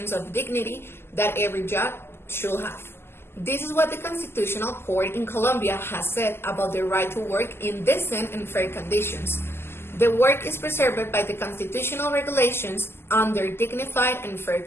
of dignity that every job should have. This is what the Constitutional Court in Colombia has said about the right to work in decent and fair conditions. The work is preserved by the constitutional regulations under dignified and fair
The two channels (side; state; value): right; late; 0.12 ms